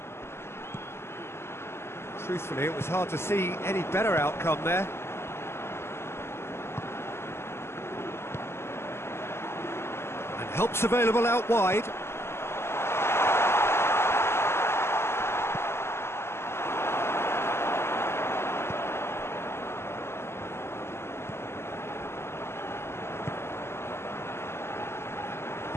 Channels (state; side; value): late; right; 0.12 ms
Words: Truthfully, it was hard to see any better outcome there. And help's available out wide.